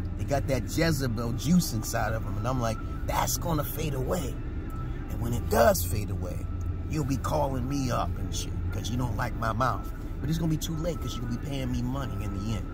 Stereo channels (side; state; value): both; identical; correlation 1.00